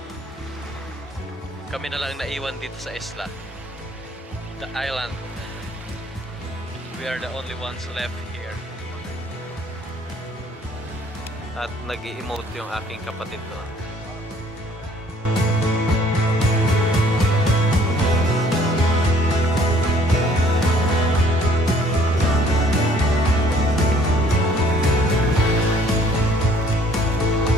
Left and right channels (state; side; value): normal; both; correlation 0.59